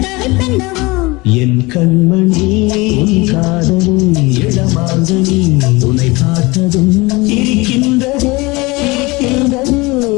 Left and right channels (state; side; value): quieter; right; 23.7 dB